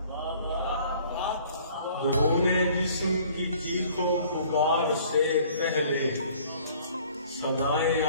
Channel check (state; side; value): inverted; both; correlation -0.55